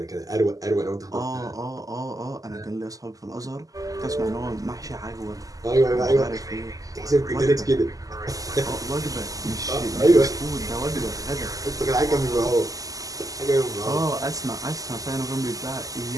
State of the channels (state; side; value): late; left; 0.17 ms